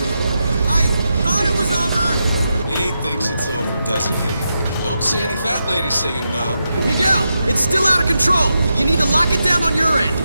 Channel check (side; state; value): both; inverted; correlation -0.87